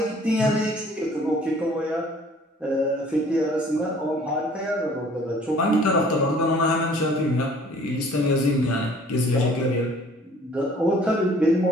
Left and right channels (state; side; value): normal; both; correlation 0.54